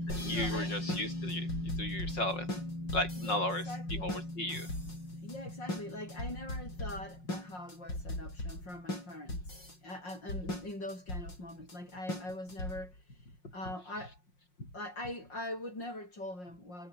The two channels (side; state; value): right; late; 5.5 ms